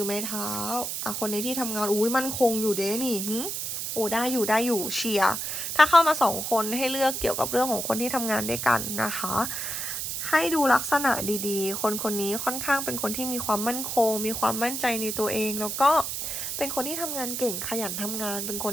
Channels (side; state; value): right; noise; hiss, 3 dB below the sound